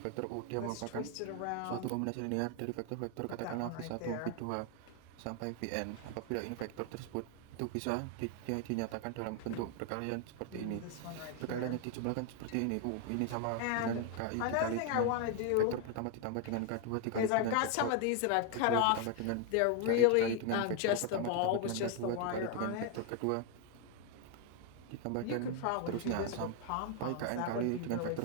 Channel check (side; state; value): both; different; correlation 0.00